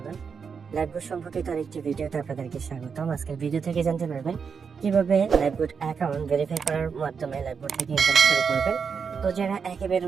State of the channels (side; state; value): left; quieter; 6.1 dB